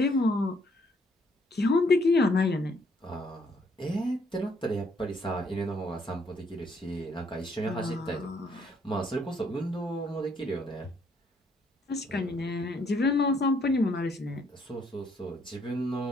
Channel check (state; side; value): normal; both; correlation 0.68